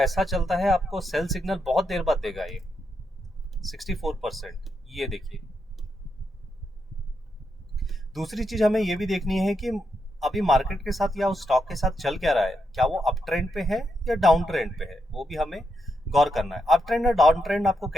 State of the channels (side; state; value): both; normal; correlation 0.82